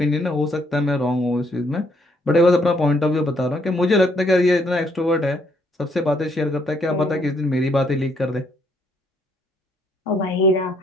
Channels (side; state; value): both; normal; correlation 0.70